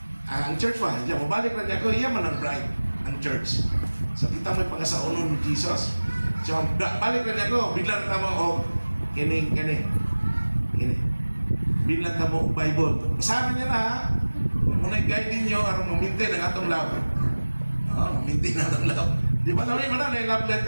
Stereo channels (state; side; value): inverted; both; correlation -1.00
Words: Ang church ba? Diyan, mubalik na niya ko. Iya man ang bride, ang church. So kita may pagkasaunon ni Jesus. So balik na niya ko. Biglang tamo o kini. Biglang tamo o Bible. Basahan niya na ha. Muna i-guide ninyo aron mamintin ang atong love. Mamintin ang atong love. Di ba namin na love